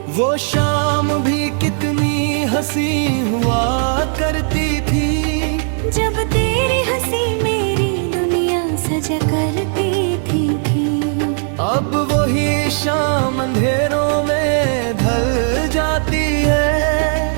वो शाम भी कितनी हंसी हुआ करती थी, जब तेरी हंसी मेरी दुनिया सजा करती थी। अब वही शाम अंधेरों में ढल जाती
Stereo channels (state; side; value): silent; left; 64 dB below the other